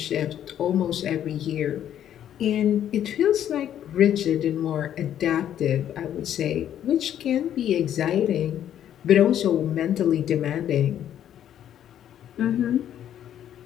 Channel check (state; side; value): quieter; right; 10.5 dB